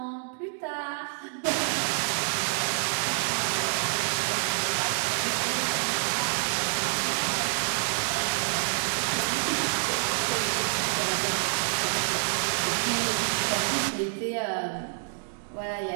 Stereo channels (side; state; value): left; silent; digital silence